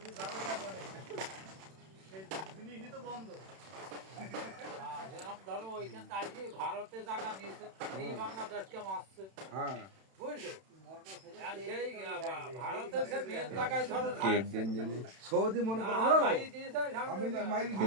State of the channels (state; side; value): late; left; 31 ms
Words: ভারতে জায়গা নিয়েছে এই বাংলাদেশকে মারছে হ্যাঁ বুঝছো সেই ভারতের সে মেন জায়গায় ধরো সৌদি মনে করো না আমি মাইরি